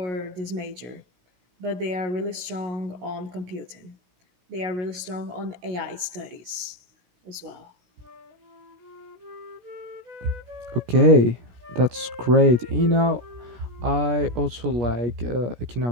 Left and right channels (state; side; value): late; left; 16 ms